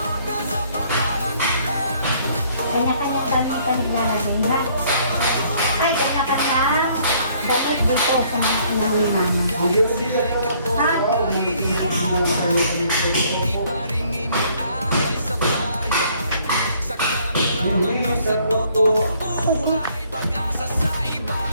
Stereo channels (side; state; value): both; inverted; correlation -0.62